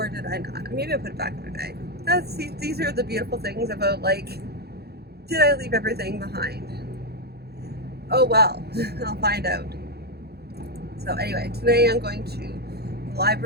did I not? Maybe I put it back in my bag. These are the beautiful things about, like, did I leave everything behind? Oh well, I'll find out. So anyway, today I'm going to the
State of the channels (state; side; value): late; left; 0.47 ms